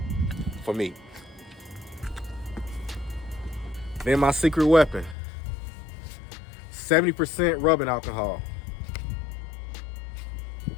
for me. Then my secret weapon, 70% rubbing alcohol.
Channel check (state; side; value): drops out; right; at 5.2 s